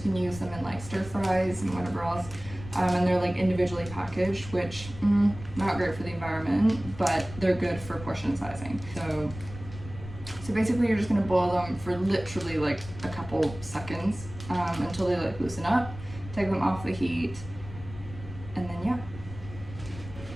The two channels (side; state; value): left; noise; rumble, 14 dB below the sound